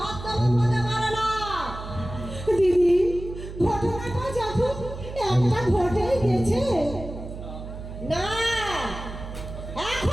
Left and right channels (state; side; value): noise; right; hum, 11 dB below the sound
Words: হতে পারে না। দিদি ঘটনাটা যখন একটা ঘটেই গেছে, না,